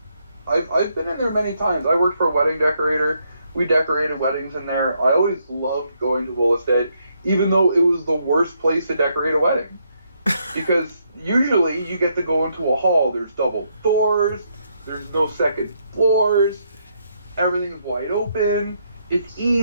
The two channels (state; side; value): inverted; both; correlation -0.75